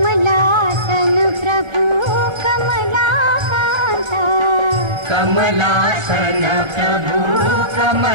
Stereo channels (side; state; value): left; late; 1.4 ms